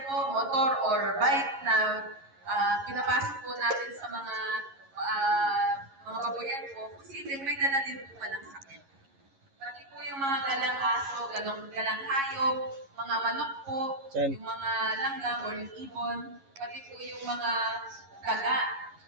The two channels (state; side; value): late; left; 11 ms